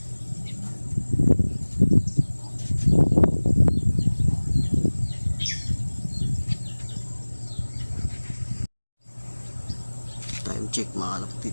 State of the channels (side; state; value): both; inverted; correlation -1.00